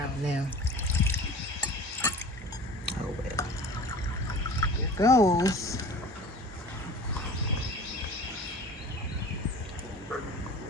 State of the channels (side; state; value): both; normal; correlation 0.41